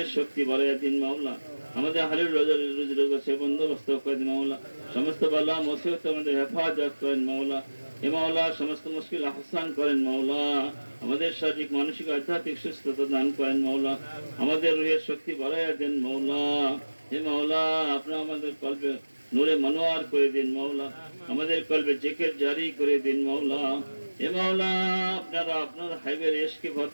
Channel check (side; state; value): both; inverted; correlation -1.00